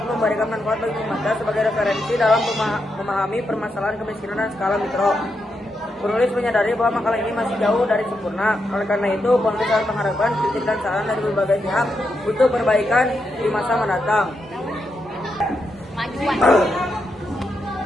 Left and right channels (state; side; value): normal; both; correlation 0.83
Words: memberikan manfaat bagi pembaca sebagai referensi dalam memahami permasalahan kemiskinan dan skala mikro. Penulis menyadari bahwa makalah ini masih jauh dari sempurna. Oleh karena itu, penulis harus mengharapkan kritik dan saran dari berbagai pihak untuk perbaikan di masa mendatang.